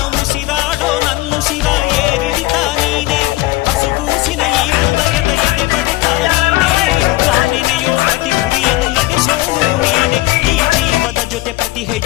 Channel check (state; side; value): quieter; right; 18.8 dB